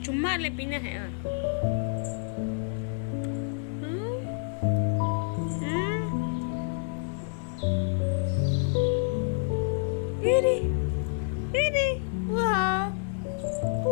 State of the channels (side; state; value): right; silent; digital silence